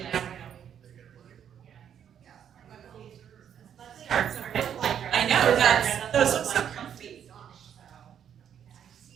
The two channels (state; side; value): quieter; left; 8.9 dB